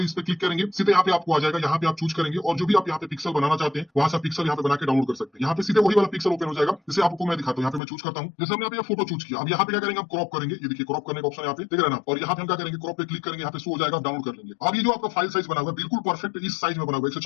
है, इस पे क्लिक करेंगे, सीधे यहाँ पे आपको आ जाएगा। यहाँ पे आप चूज करेंगे और जो भी आप यहाँ पे पिक्सल बनाना चाहते हैं वहां से पिक्सल यहाँ पे बना के डाउनलोड कर सकते हैं। यहाँ पे सीधे वही वाला पिक्सल ओपन हो जाएगा, जैसे आपको मैं दिखाता हूँ। यहाँ पे मैं चूज करता हूँ, जैसे हमने यहाँ पे फोटो चूज किया। अब यहाँ पे क्या करेंगे, हम क्रॉप करेंगे। ये देखिए क्रॉप करने का ऑप्शन यहाँ पे देख रहे हैं ना, और यहाँ पे हम क्या करेंगे, क्रॉप पे क्लिक करेंगे, यहाँ पे शो हो जाएगा, डाउनलोड कर लेंगे। अब ये जो आपका फाइल साइज बना हुआ है बिल्कुल परफेक्ट इस साइज में बना हुआ है,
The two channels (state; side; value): drops out; right; at 7.8 s